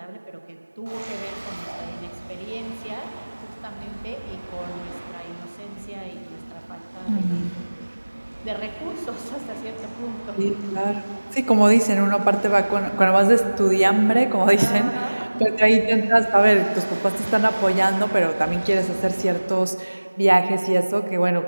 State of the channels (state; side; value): inverted; both; correlation -1.00